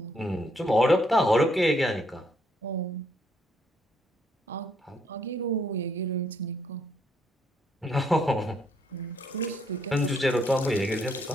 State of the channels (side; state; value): both; normal; correlation 0.71